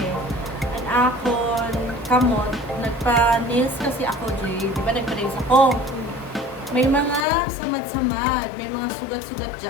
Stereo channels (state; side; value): drops out; right; at 7.2 s